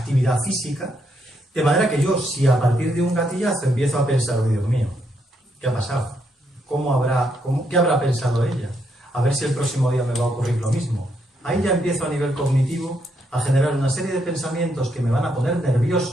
física, de manera que yo, si a partir de un gatillazo empiezo a pensar, oh, Dios mío, ¿qué ha pasado? ¿Qué habrá pensado ella? A ver si el próximo día me va a ocurrir lo mismo. Ahí ya empiezo a nivel cognitivo a generar una serie de pensamientos que me van a poner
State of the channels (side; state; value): both; normal; correlation 0.76